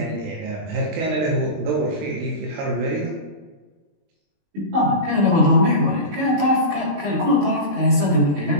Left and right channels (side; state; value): left; late; 20 ms